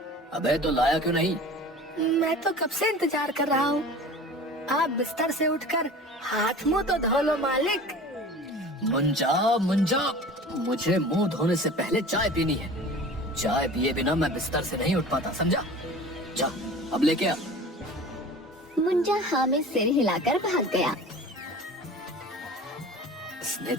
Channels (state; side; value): normal; both; correlation 0.40